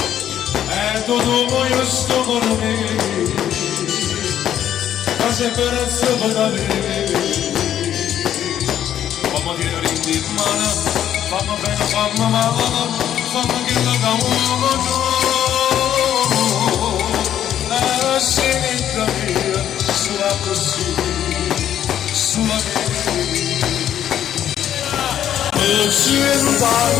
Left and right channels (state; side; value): quieter; right; 10.6 dB